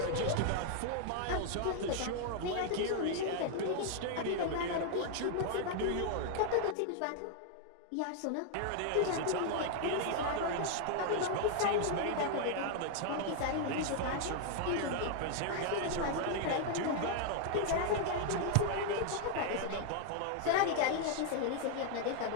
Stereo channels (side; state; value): both; different; correlation 0.00